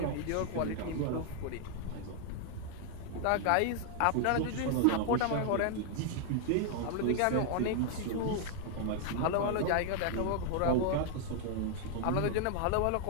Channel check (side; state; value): both; different; correlation 0.00